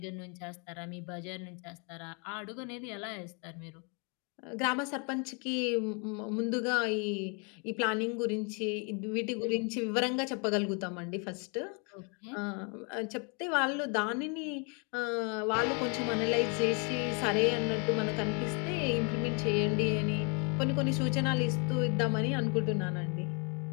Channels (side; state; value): right; quieter; 35.4 dB